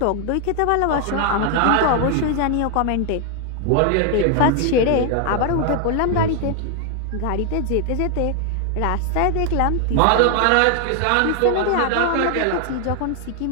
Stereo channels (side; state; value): both; different; correlation 0.00